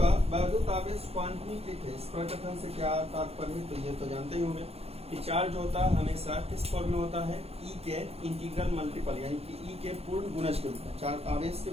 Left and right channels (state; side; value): late; left; 0.29 ms